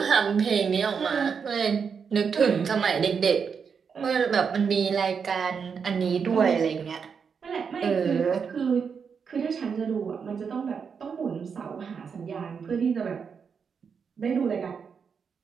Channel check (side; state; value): left; quieter; 6.2 dB